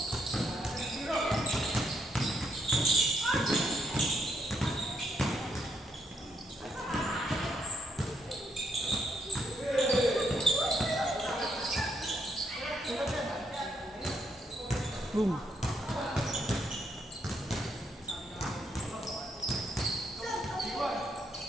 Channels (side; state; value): both; normal; correlation 0.75